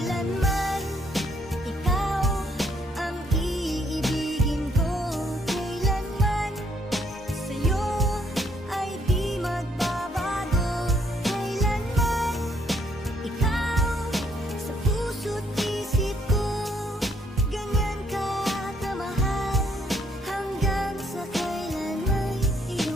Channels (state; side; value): normal; both; correlation 0.70